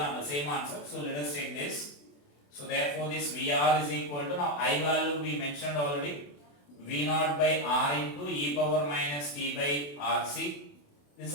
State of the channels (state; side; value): late; right; 28 ms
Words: same answer. So let us take this. So therefore this VR is equal to, now I value we mentioned already, V naught by R into e power minus t by RC. This is